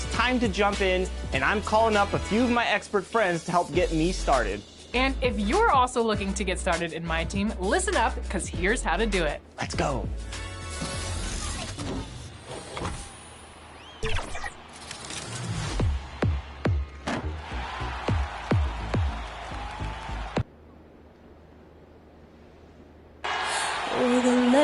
time to jump in, and I'm calling up a few of my expert friends to help get me started. And if you're also looking to get started in my team, listen up, because here's how to do it. Let's go. For the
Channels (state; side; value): identical; both; correlation 1.00